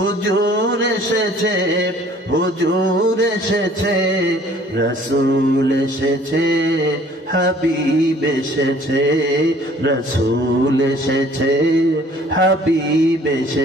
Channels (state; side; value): normal; both; correlation 0.55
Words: এসেছে, হুজুর এসেছে, রাসূল এসেছে, হাবিব এসেছে, রাসূল এসেছে, হাবিব